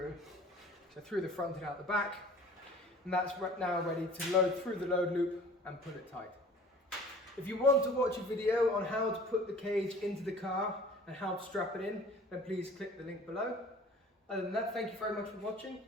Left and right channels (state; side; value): normal; both; correlation 0.47